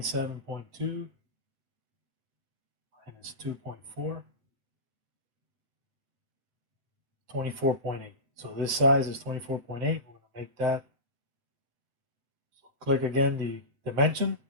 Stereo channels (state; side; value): late; left; 7.4 ms